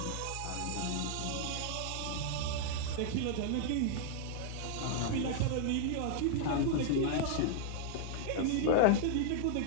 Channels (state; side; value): different; both; correlation -0.01